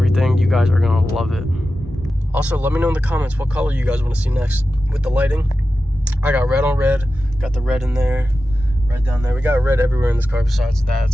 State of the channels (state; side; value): normal; both; correlation 0.93